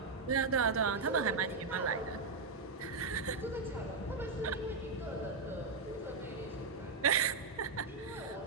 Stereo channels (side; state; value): left; quieter; 4.2 dB